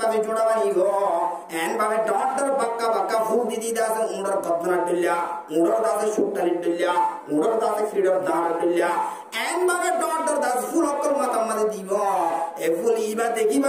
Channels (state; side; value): identical; both; correlation 1.00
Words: জোড়া বানি গো এন ভাবে ডটর বাক্কা বাক্কা ফুল দিদি দাসে উড়র গদনা দিল্লা উড়র দাসে সুট্টালি দিল্লা উড়র দাসে ফ্রিডম দাঁড় দিল্লা এন ভাবে ডটর দাস ফুল অকর মাথা মাঝে দিব এ ফুল ইবা